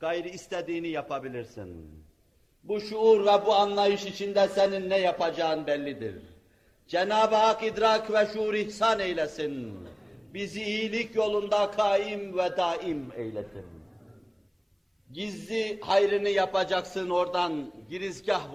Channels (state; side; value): identical; both; correlation 1.00